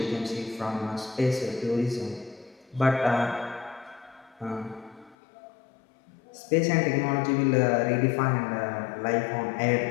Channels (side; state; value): right; drops out; at 5.2 s